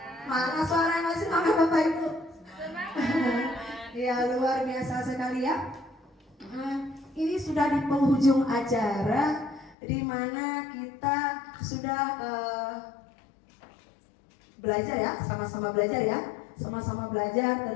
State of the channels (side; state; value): right; drops out; at 9.8 s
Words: Mana suara yang masih semangat Bapak Ibu? Semangat. Ya, luar biasa sekali ya. Ini sudah di penghujung acara, di mana kita sudah belajar ya, sama-sama belajar ya, sama-sama belajar